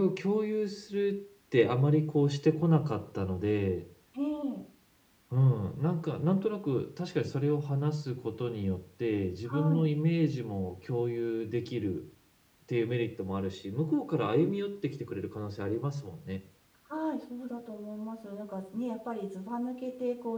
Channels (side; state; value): both; identical; correlation 1.00